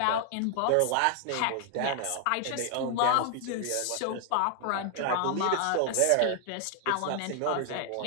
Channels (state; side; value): different; both; correlation 0.00